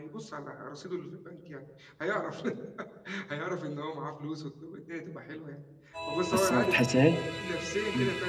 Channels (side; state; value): both; identical; correlation 1.00